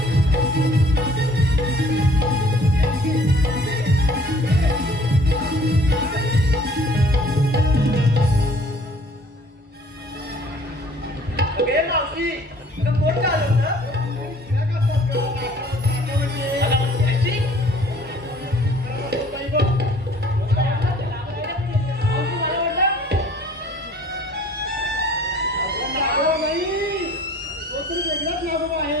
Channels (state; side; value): normal; both; correlation 0.54